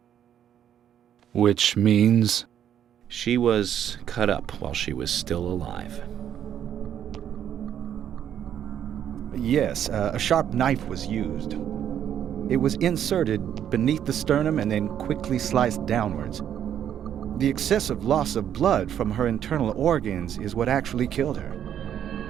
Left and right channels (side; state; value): left; quieter; 9.7 dB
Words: Which means... She was cut up while she was still alive. Yes, a sharp knife was used. It was inserted beneath the sternum and then quickly sliced downwards. The excessive loss of blood from her internal organs is what actually killed her.